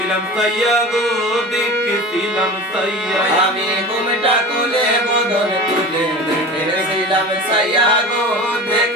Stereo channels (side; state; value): both; normal; correlation 0.34